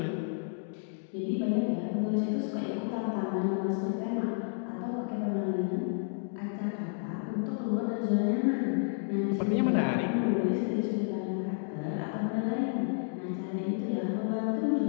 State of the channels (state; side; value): silent; right; digital silence